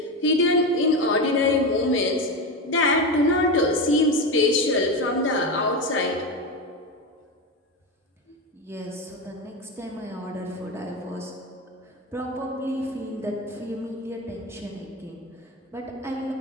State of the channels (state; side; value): normal; both; correlation 0.18